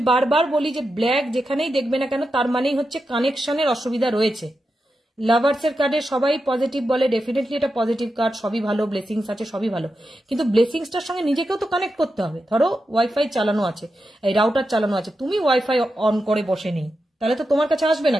বারবার বলি যে ব্ল্যাক যেখানেই দেখবে না কেন তার মানেই হচ্ছে কানেকশনের অসুবিধা রয়েছে। লাভার্সের কার্ডে সবাই পজিটিভ বলে, ডেফিনেটলি এটা পজিটিভ কার্ড, সবই ভালো, ব্লেসিংস আছে, সবই ভালো, কিন্তু ব্লেসিংসটার সঙ্গে নিজেকেও তো কানেক্ট করতে হবে। ধরো ওয়াইফাই চালানো আছে, এই রাউটার চালানো আছে, তুমি ওয়াইফাই অন করে বসে নেই, তাহলে তো তোমার কাছে আসবে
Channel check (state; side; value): normal; both; correlation 0.89